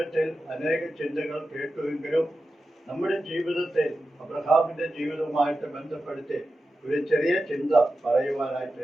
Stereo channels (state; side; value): normal; both; correlation 0.92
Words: അനേക ചിന്തകൾ കേട്ടുവെങ്കിലും നമ്മുടെ ജീവിതത്തിൽ അബ്രഹാമിന്റെ ജീവിതവുമായിട്ട് ബന്ധപ്പെടുത്തി ഒരു ചെറിയ ചിന്ത